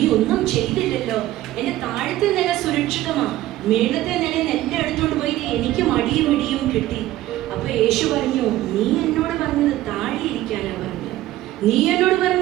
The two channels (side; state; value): left; quieter; 15.2 dB